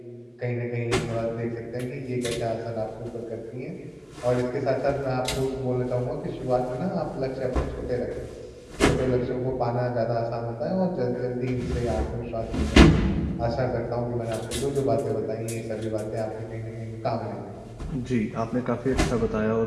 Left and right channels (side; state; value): both; identical; correlation 1.00